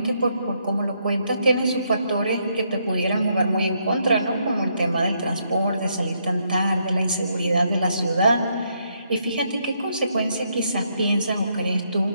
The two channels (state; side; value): inverted; both; correlation -0.75